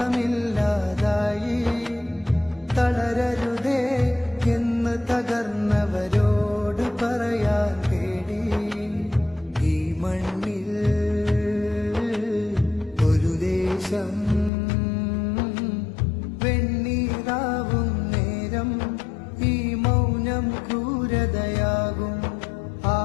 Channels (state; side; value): drops out; right; at 14.5 s